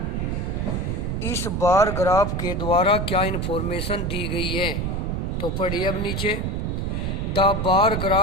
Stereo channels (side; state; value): right; noise; rumble, 1 dB below the sound